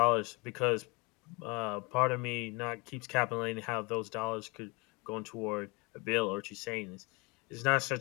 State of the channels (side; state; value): right; quieter; 27.6 dB